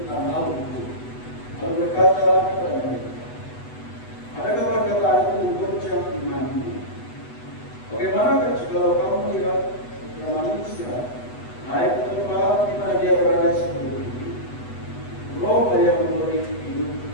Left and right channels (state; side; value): late; right; 8.1 ms